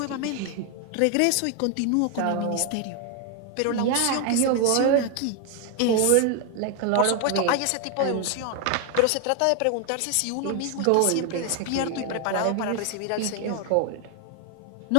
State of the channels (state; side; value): different; both; correlation 0.00